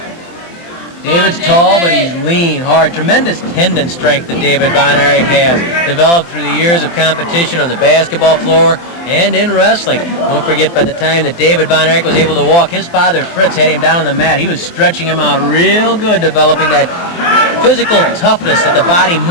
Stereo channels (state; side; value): late; right; 23 ms